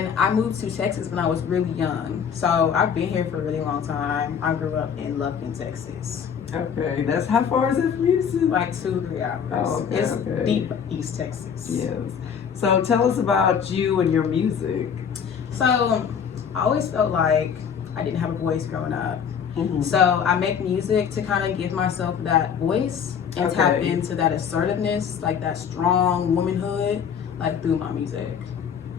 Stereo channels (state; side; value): quieter; right; 7.4 dB